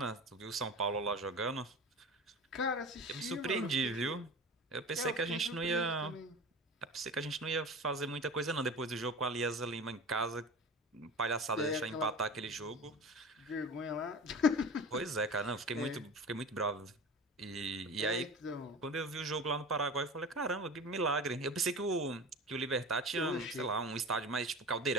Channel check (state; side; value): normal; both; correlation 0.34